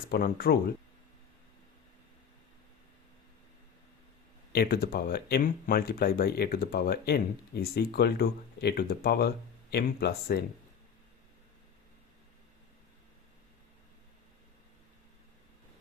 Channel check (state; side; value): quieter; right; 7.2 dB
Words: rule. A to the power m multiplied by a to the power n is equal to a to the power m plus n.